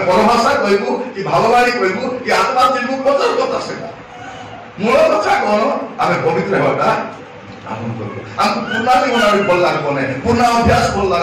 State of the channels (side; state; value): both; identical; correlation 1.00